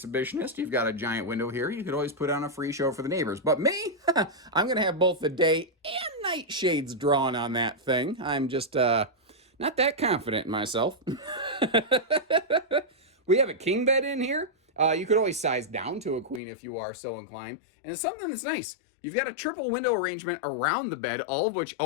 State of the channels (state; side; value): drops out; right; at 16.4 s